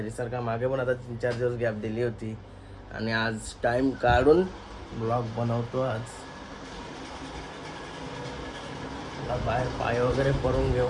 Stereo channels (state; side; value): identical; both; correlation 1.00